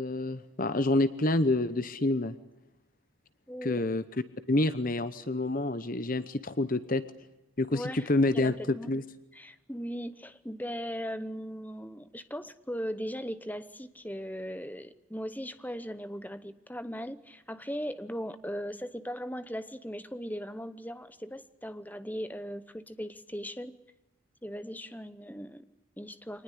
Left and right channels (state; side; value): normal; both; correlation 0.61